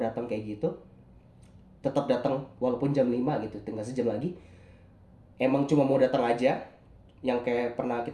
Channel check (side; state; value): both; identical; correlation 1.00